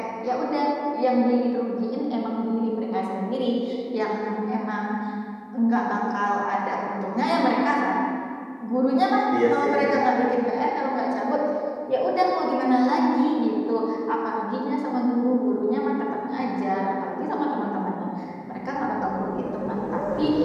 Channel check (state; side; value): identical; both; correlation 1.00